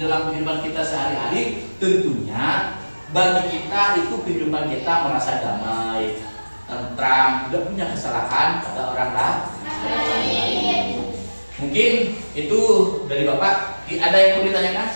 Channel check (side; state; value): both; inverted; correlation -1.00